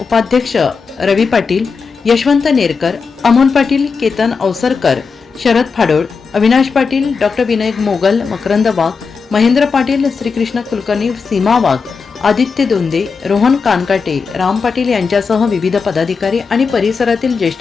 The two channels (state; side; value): quieter; right; 5.2 dB